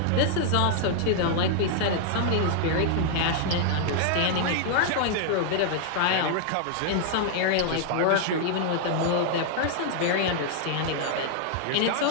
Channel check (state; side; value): different; both; correlation -0.01